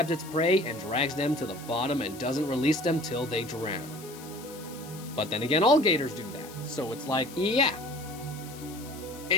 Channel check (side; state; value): left; noise; hiss, 17 dB below the sound